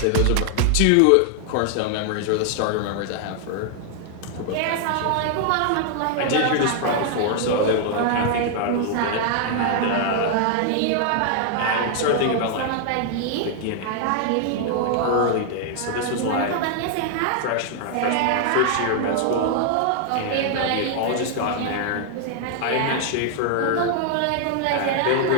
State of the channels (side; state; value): both; different; correlation 0.00